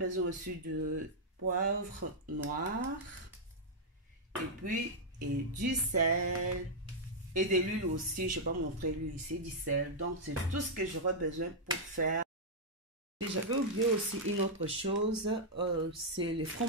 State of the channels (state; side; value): normal; both; correlation -0.05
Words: aussi de poivre noir. Et puis, du sel. Et de l'huile aussi. Je ne vais pas montrer l'huile ici, du sel. Donc, c'est tout ce que j'aurai besoin pour faire. J'avais oublié aussi une autre chose, c'est le